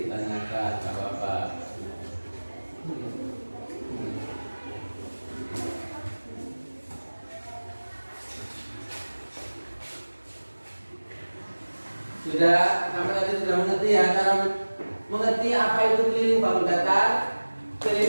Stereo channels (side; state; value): both; inverted; correlation -1.00